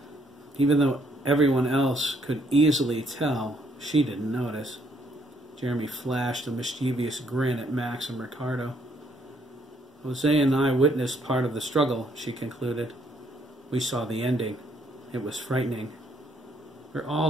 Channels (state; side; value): normal; both; correlation 0.69